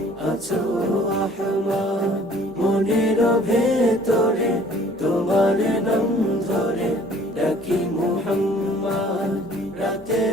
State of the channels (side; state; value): both; normal; correlation 0.54